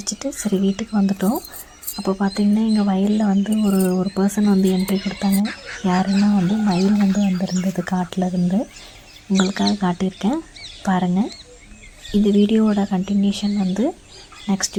சரி வீட்டுக்கு வந்துட்டோம். அப்போ பார்த்திங்கன்னா எங்கள் வயலில் வந்து ஒரு பர்சன் வந்து என்ட்ரி கொடுத்தாங்க. யாருன்னா வந்து மயில் வந்து வந்திருந்தது காட்டில் இருந்து. உங்களுக்காக காட்டியிருக்கேன் பாருங்கள். இந்த வீடியோவோட கண்டினியூஷன் வந்து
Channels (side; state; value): both; identical; correlation 1.00